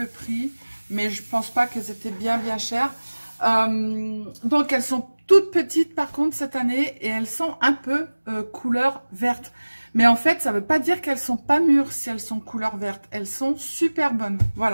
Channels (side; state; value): both; inverted; correlation -1.00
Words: prix, mais je pense pas qu'elles étaient bien chères. Donc, elles sont toutes petites par contre cette année et elles sont un peu couleur verte. Mais en fait, ça veut pas dire qu'elles sont pas mûres si elles sont couleur verte. Elles sont super bonnes,